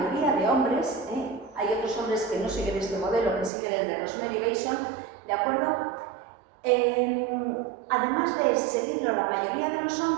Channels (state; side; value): drops out; left; at 3.5 s